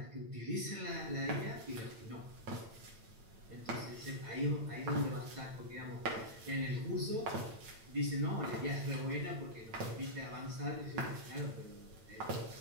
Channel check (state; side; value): late; left; 8.9 ms